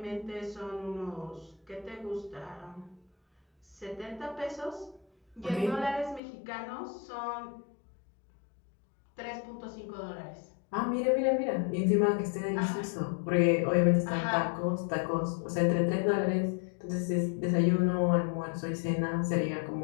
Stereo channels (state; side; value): drops out; right; at 6.2 s